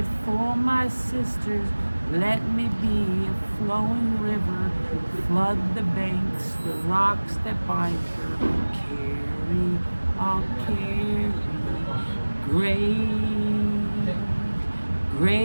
for my sisters, let me be a flowing river. Flood the banks, the rocks that bind her. Carry, I'll carry.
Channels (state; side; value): inverted; both; correlation -1.00